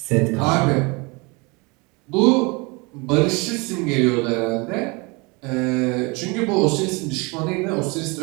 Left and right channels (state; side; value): quieter; left; 28.0 dB